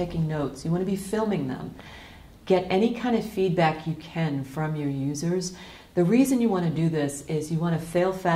notes. You want to be filming them. Get any kind of feedback you can from your users. The reason you want to do this is you want to fail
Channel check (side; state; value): both; identical; correlation 1.00